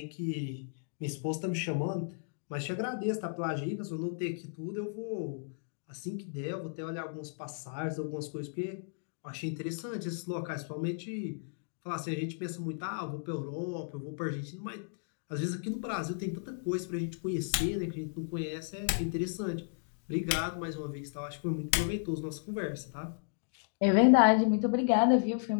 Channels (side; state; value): right; silent; digital silence